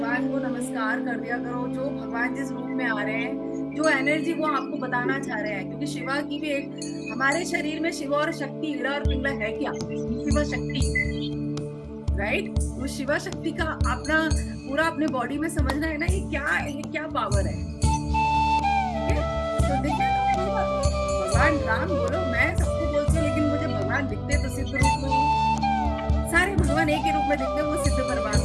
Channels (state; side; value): identical; both; correlation 1.00